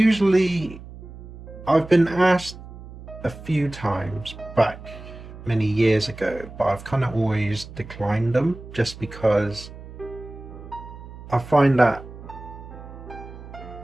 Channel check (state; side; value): noise; right; hum, 15 dB below the sound